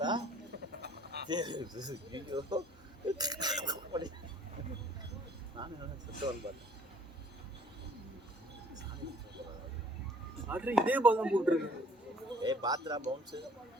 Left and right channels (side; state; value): both; normal; correlation 0.56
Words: நானும் சுத்தவன் பார்த்தேன். இதே பால் தான் போட்டுருக்கு. பாத்ரா பவுன்ஸு